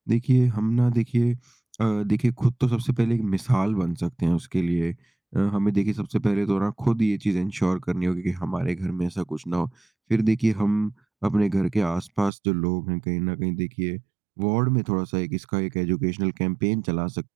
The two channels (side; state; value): left; drops out; at 12.3 s